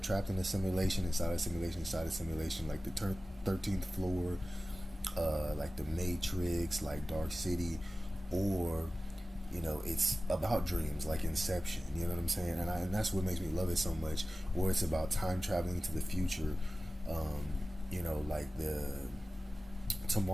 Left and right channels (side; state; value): both; normal; correlation 0.95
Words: in a simulation, inside a simulation, inside a simulation, like the 13th floor, like the Matrix, like Dark City, or it's about dreams, like Inception. You know what I'm saying? And that's what makes me love it so much. Or it's about time traveling to the future. Um, like the